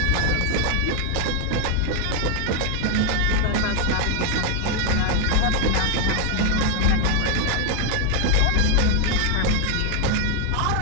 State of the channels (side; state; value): both; different; correlation 0.00